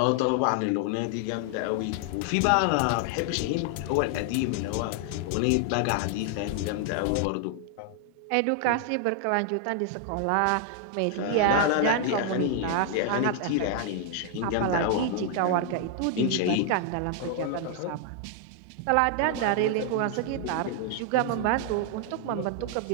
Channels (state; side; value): different; both; correlation 0.00